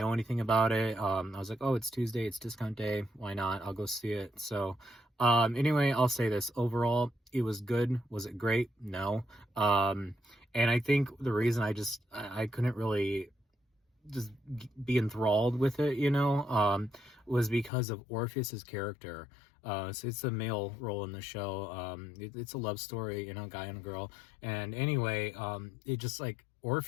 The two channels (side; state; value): right; drops out; at 17.7 s